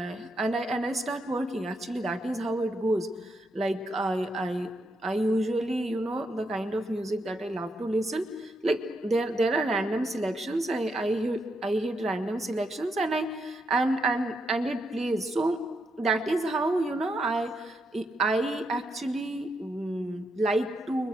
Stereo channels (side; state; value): both; normal; correlation 0.81